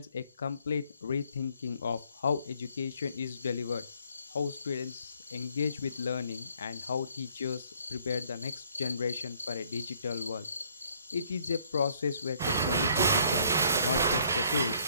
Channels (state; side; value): inverted; both; correlation -0.63